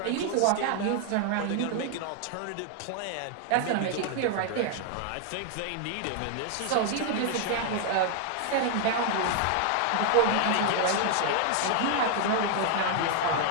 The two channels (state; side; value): different; both; correlation 0.00